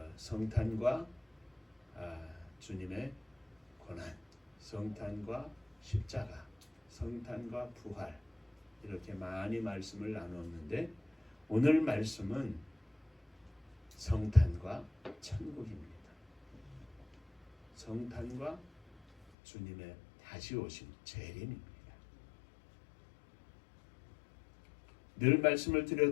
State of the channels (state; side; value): drops out; right; at 19.2 s